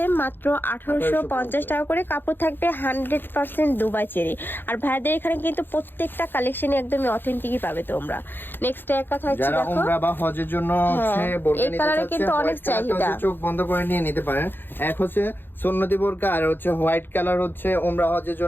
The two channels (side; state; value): right; late; 0.098 ms